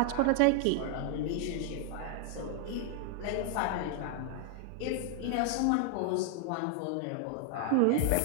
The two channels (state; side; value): different; both; correlation 0.00